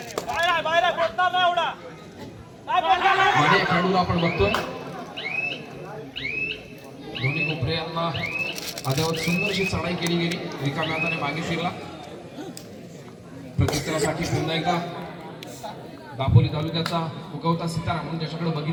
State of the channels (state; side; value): identical; both; correlation 1.00